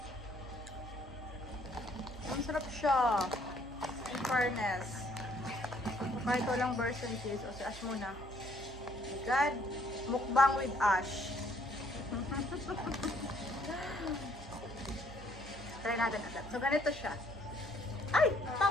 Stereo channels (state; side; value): normal; both; correlation 0.65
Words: Masarap siya. In fairness. Kahit walang Borsan cheese. O si Ash muna. Oh my God. Mukbang with Ash. Try natin agad. So, ganito siya. Ay!